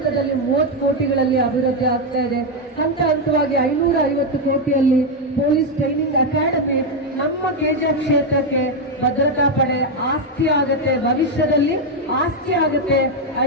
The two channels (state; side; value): normal; both; correlation 0.04